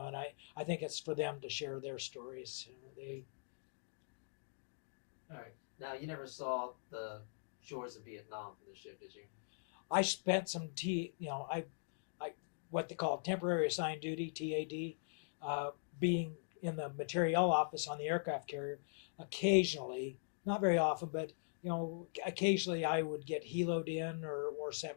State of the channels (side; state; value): right; silent; digital silence